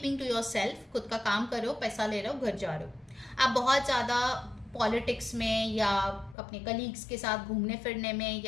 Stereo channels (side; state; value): right; drops out; at 6.4 s